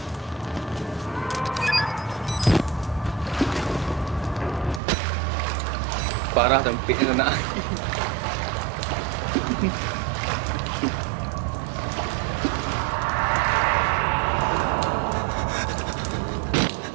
Parah tempiknya nak.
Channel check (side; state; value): left; drops out; at 4.8 s